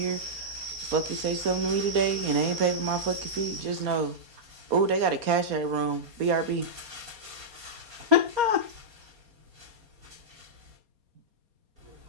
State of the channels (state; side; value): late; left; 4.3 ms